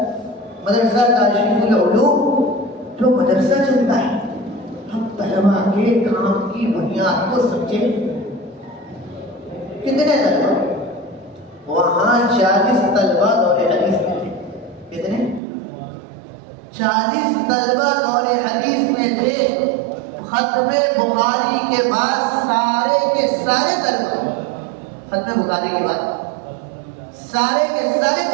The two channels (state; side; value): drops out; left; at 15.4 s